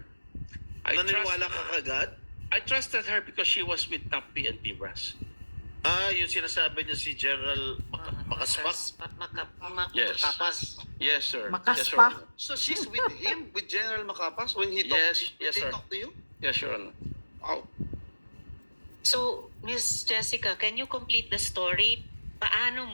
Naniniwala ka kagad? I trusted her because she was with top PNP brass. Yung sinasabi niya si General Makaspak? Yes. Makapas. Yes, sir. Makas Yes, Your pa. Honor. So, she's with him, with General Makapas when he Yes, talked yes, they sir. talked to you? Yes, Your Honor. Wow. So, Miss Jessica, can you complete the story? Paano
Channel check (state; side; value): inverted; both; correlation -1.00